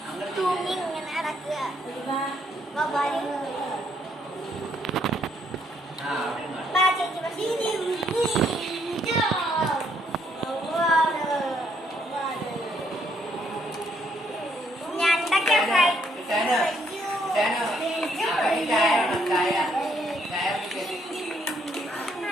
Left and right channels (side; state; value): both; normal; correlation 0.70